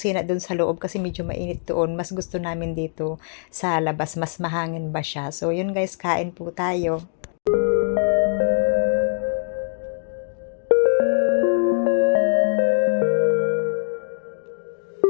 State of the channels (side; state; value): right; silent; digital silence